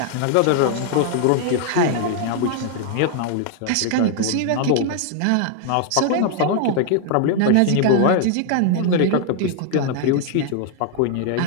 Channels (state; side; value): different; both; correlation 0.00